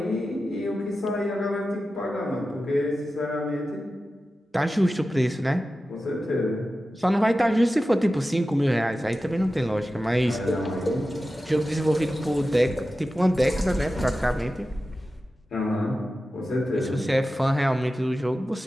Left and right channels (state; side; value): normal; both; correlation 0.93